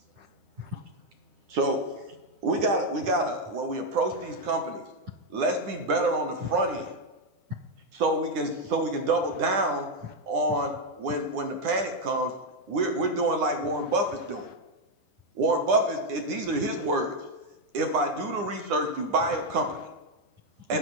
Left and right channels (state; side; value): late; left; 9.8 ms